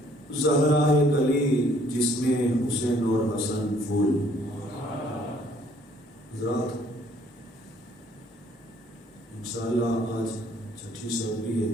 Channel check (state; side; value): normal; both; correlation 0.61